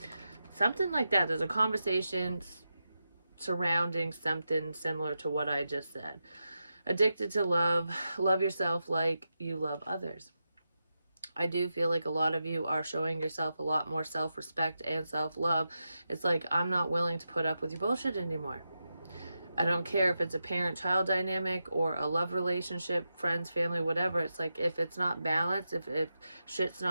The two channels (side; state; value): both; inverted; correlation -0.89